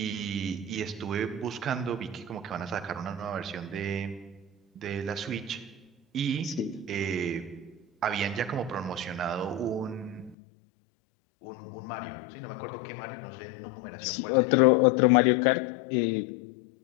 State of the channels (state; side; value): drops out; right; at 10.4 s